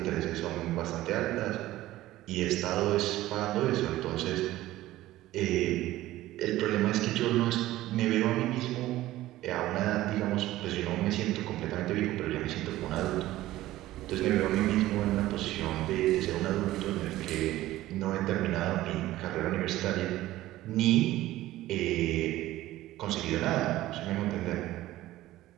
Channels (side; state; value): left; quieter; 15.8 dB